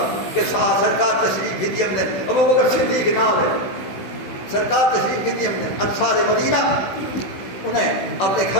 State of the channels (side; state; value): right; late; 16 ms